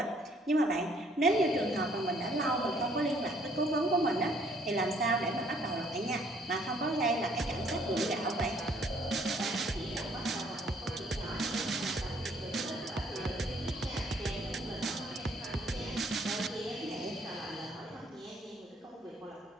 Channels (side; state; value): both; normal; correlation 0.63